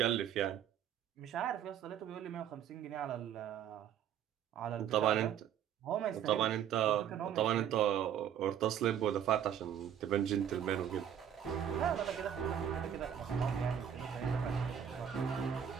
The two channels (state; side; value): quieter; left; 9.3 dB